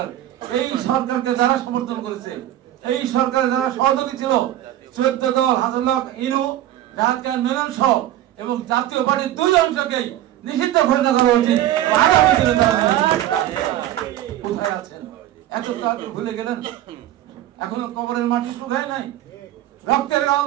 এই সরকারকে যারা সমর্থন করেছে, এই সরকার যারা সহযোগী ছিল, 14 দল, হাসানুল্লাহ ইনু, রাহাত খান মেনন সহ এবং জাতীয় পার্টির 2 অংশকেই নিষিদ্ধ ঘোষণা করা উচিত। কোথায় আছেন? এত তাড়াতাড়ি ভুলে গেলেন? এখনো কবরের মাটি শুকায় নাই, রক্তের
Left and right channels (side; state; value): left; quieter; 13.3 dB